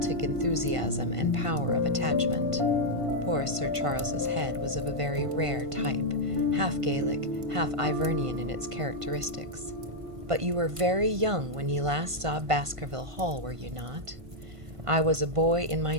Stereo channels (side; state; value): left; late; 1.5 ms